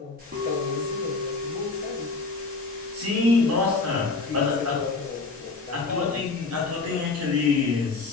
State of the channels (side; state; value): right; quieter; 4.0 dB